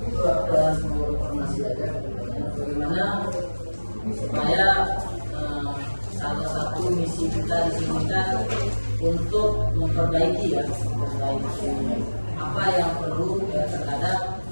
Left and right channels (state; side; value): inverted; both; correlation -1.00